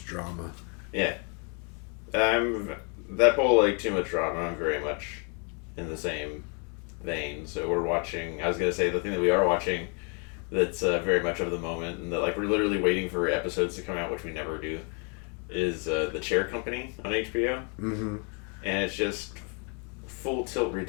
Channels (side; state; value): right; quieter; 37.5 dB